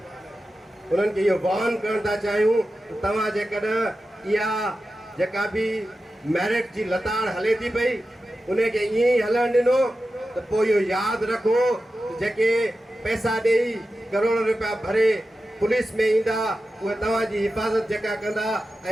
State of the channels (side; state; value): both; normal; correlation 0.92